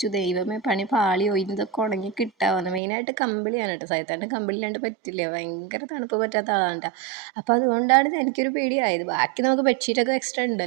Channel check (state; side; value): drops out; left; at 2.8 s